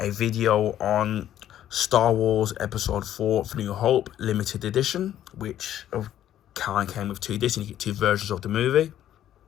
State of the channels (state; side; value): quieter; right; 11.6 dB